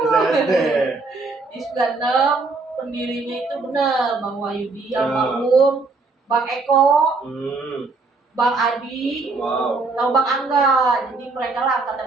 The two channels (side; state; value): left; quieter; 3.8 dB